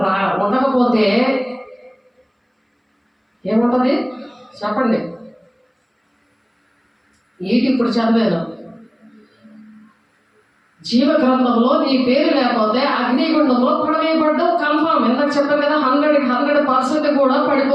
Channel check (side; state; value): both; identical; correlation 1.00